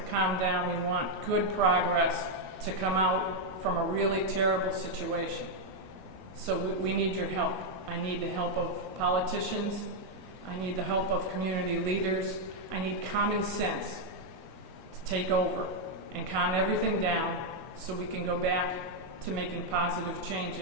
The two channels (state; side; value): late; left; 22 ms